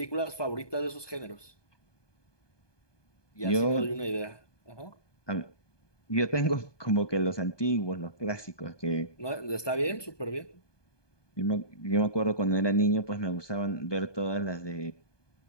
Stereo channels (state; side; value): late; right; 1.2 ms